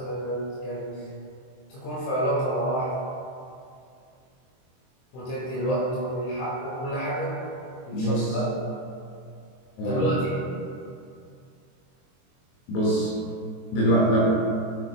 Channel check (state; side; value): late; right; 23 ms